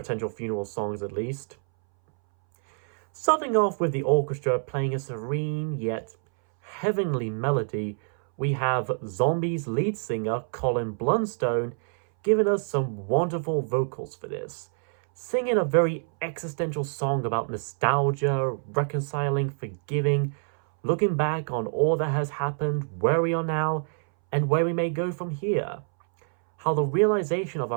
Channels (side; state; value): left; silent; 61 dB below the other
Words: funeral songs at least. Starting off with the orchestra playing a serene yet heavenly melody, we have Zombies lead singer Colin Blunstone giving us some wonderful vocals for this, singing a very existential song about nostalgia, reconciling, forgiving, looking back on all that has happened, where we are now, and where we may go from here. How the realization of